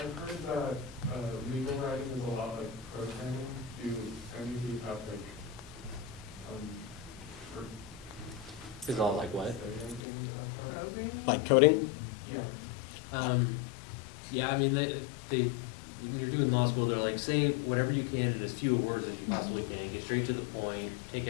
heard that legal writing is a lot like programming. Do any of you have like, Is all like what? say anything about that? Programming? Like coding? Yeah. Yeah, I mean, they when you're doing law school, they're like, say whatever you can in as few words as you possibly can, get straight to the point, take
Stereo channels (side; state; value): right; drops out; at 10.0 s